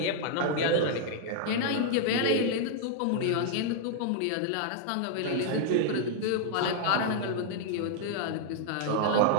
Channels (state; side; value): different; both; correlation 0.00